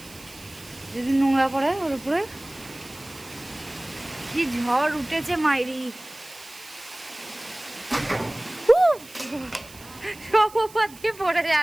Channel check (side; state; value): right; noise; hiss, 20 dB below the sound